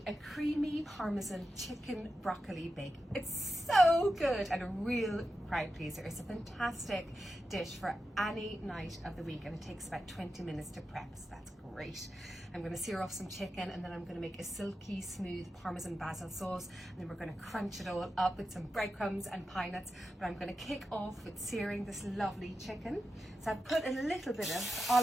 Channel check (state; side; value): normal; both; correlation 0.90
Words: a creamy Parmesan chicken broccoli bake. It's so good and a real crowd pleaser. It's a fantastic dish for any night of the week, and it takes about 20 minutes to prep, so that's great. I'm going to sear off some chicken, and then I'm going to make a silky smooth Parmesan Basil sauce, and then we're going to crunch it all up with some breadcrumbs and pine nuts. But I'm going to kick off with searing this lovely chicken. So I've put a little bit of